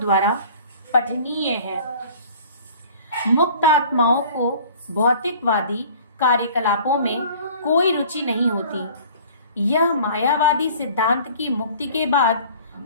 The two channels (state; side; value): inverted; both; correlation -0.48